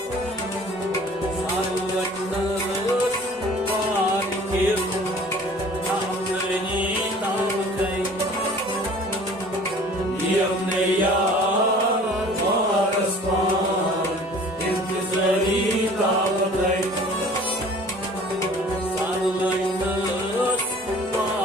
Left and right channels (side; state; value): both; normal; correlation 0.48